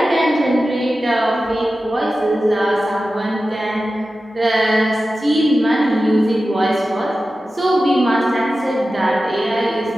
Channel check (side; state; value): both; normal; correlation 0.94